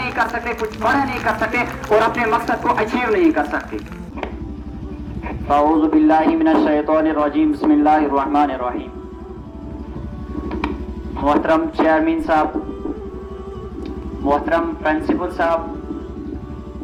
کر سکتے، کچھ بڑا نہیں کر سکتے اور اپنے مقصد کو اچیو نہیں کر سکتے۔ اعوذ باللہ من الشیطان الرجیم، بسم اللہ الرحمن الرحیم۔ محترم چیئرمین صاحب، محترم پرنسپل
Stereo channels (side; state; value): both; identical; correlation 1.00